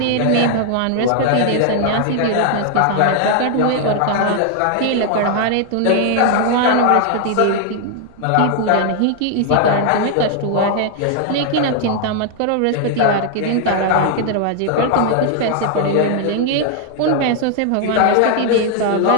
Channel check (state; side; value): different; both; correlation 0.00